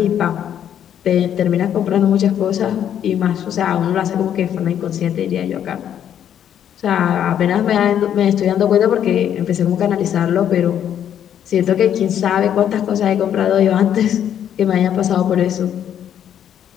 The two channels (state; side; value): quieter; right; 9.7 dB